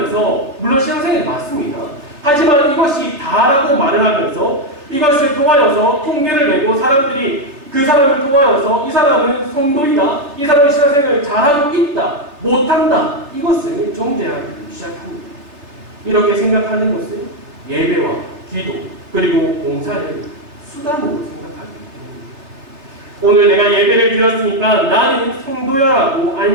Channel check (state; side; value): late; left; 3.4 ms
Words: 물론 신앙생활이 맞습니다. 하지만 이것이 다라고 말을 하면서 이것을 통하여서 통계를 내고 사람들이 그 사람을 통하여서 이 사람은 성도이다, 이 사람은 신앙생활을 잘하고 있다, 못한다, 이것을 정죄하기 시작합니다. 이렇게 생각하는 것은 예배와 기도 그리고 봉사를 수단으로 생각하기 때문입니다. 오늘 내가 예배를 드렸으니까 나는 성도야라고